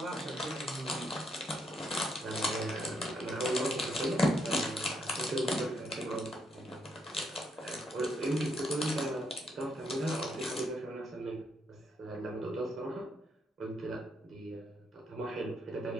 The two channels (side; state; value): both; normal; correlation 0.75